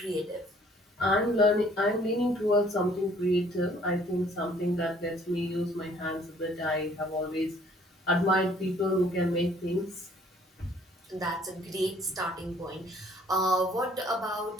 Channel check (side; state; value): both; normal; correlation 0.59